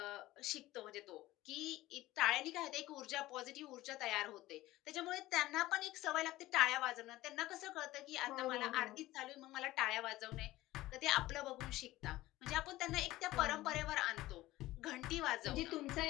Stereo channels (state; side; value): quieter; right; 17.1 dB